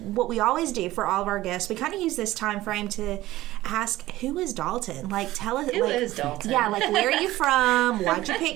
what we always do for all of our guests, we kind of use this time frame to ask, who is Dalton? Like, tell us. Who is Dalton? Yeah, like, where are you from? Why'd you pick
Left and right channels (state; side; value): quieter; left; 16.4 dB